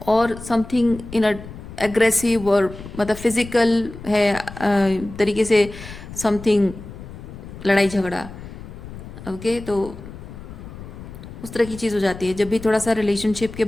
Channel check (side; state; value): left; noise; rumble, 14 dB below the sound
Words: और समथिंग इन अ एग्रेसिव, और मतलब फिजिकल है तरीके से समथिंग, लड़ाई झगड़ा। ओके, तो उस तरह की चीज़ हो जाती है जब भी थोड़ा सा रिलेशनशिप के